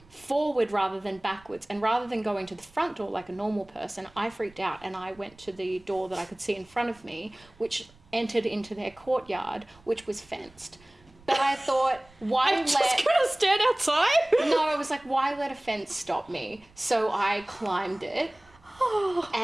forward rather than backwards. And rather than going to the front door like a normal person, I freaked out and I went to the door that I could see in front of me, which entered into their courtyard, which was fenced. But I thought, I'm just gonna stand outside? No, I was like, why let a fence stop me? So I climbed it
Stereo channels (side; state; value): right; noise; rumble, 27 dB below the sound